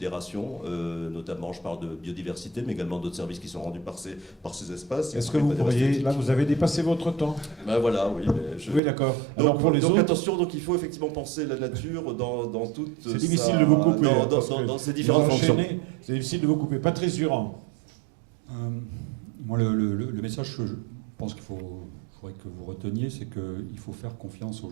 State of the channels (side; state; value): left; drops out; at 8.8 s